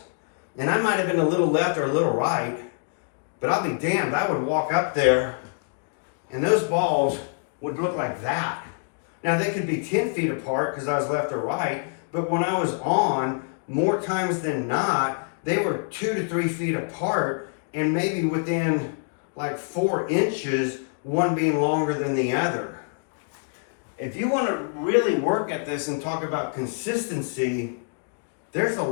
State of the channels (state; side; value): silent; right; digital silence